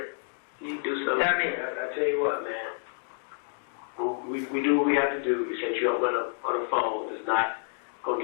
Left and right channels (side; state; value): right; silent; digital silence